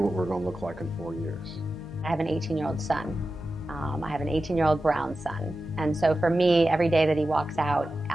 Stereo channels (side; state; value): both; normal; correlation 0.93